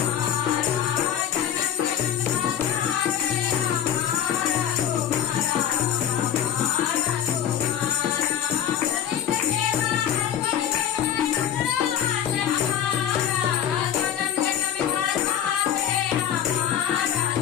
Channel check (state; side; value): quieter; right; 9.6 dB